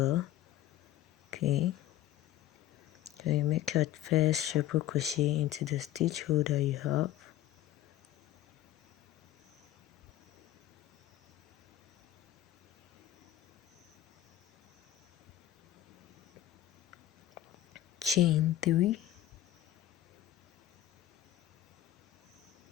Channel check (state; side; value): quieter; right; 13.0 dB